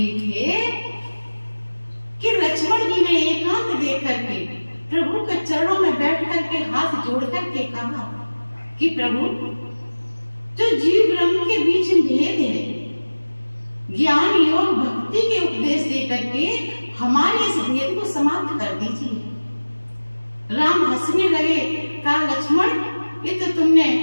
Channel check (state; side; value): inverted; both; correlation -1.00